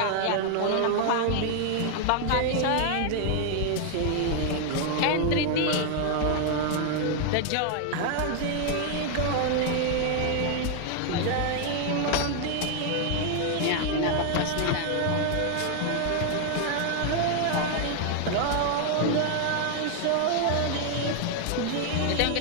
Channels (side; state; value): both; different; correlation 0.00